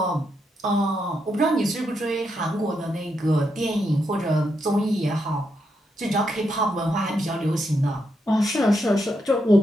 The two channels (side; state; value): both; normal; correlation 0.82